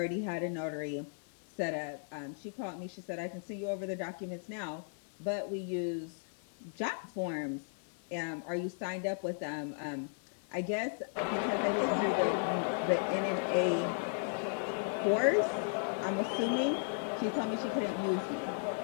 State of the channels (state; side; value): silent; right; digital silence